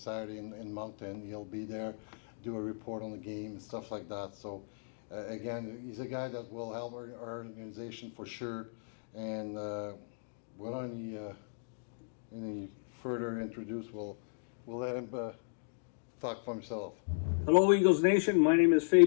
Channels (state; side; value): silent; right; digital silence